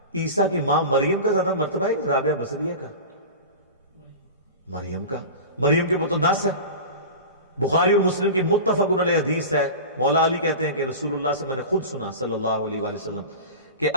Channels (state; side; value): inverted; both; correlation -0.31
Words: عیسیٰ کی ماں مریم کا زیادہ مرتبہ ہے رابعہ بصریہ کا؟ مریم کے اوپر تو نص ہے، بخاری اور مسلم کی متفق علیہ حدیث ہے. مولا علی کہتے ہیں کہ رسول اللہ سے میں نے خود سنا صلی اللہ علیہ وآلہ وسلم کہ